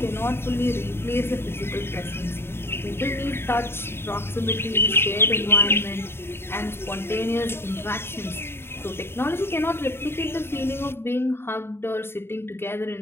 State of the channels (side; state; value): right; late; 0.11 ms